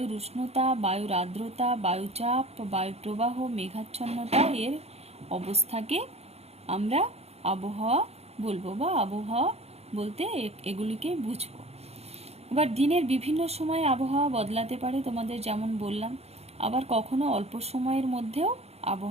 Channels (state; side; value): late; left; 0.30 ms